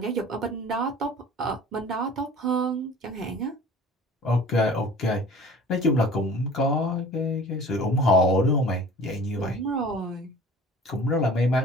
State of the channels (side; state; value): both; normal; correlation 0.45